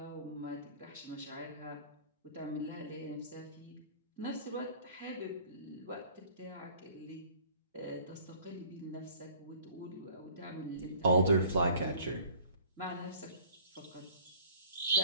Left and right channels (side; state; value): both; inverted; correlation -0.50